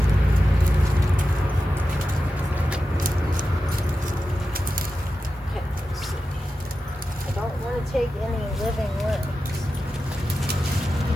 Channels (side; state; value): both; normal; correlation 0.92